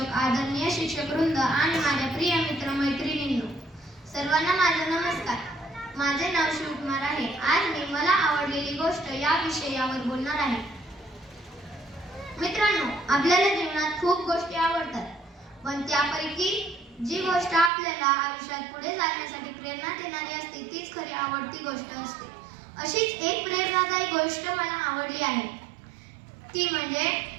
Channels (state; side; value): drops out; left; at 17.7 s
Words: आदरणीय शिक्षक वृंद आणि माझ्या प्रिय मित्र मैत्रिणींनो, सर्वांना माझा नमस्कार. माझे नाव शिवकुमार आहे. आज मी मला आवडलेली गोष्ट या विषयावर बोलणार आहे. मित्रांनो, आपल्याला जीवनात खूप गोष्टी आवडतात, पण त्यापैकी जी गोष्ट आपल्याला आयुष्यात पुढे जाण्यासाठी प्रेरणा देणारी असते तीच खरी आवडती गोष्ट असते. अशीच एक प्रेरणादायी गोष्ट मला आवडली आहे, ती म्हणजे